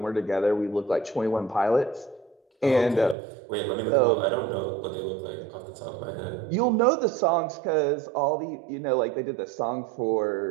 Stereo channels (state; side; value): drops out; left; at 3.2 s